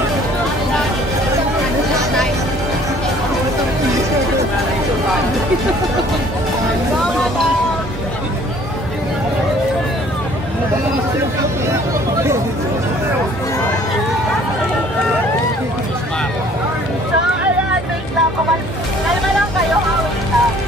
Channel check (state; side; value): normal; both; correlation 0.56